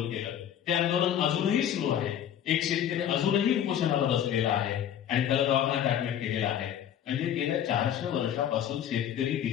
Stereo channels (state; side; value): quieter; right; 9.9 dB